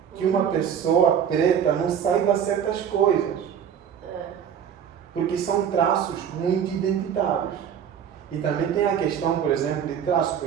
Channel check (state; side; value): quieter; left; 8.5 dB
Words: que uma pessoa preta não saiba certas coisas. Porque são traços muito identitários. E também tem a questão, por exemplo, de traços. Por